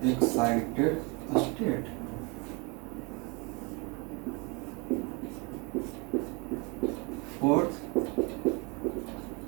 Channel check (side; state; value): left; quieter; 29.7 dB